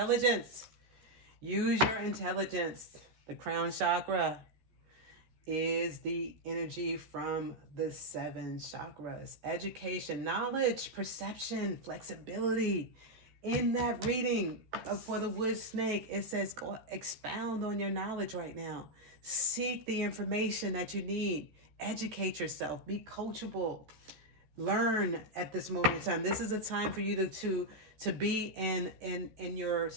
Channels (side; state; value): left; late; 13 ms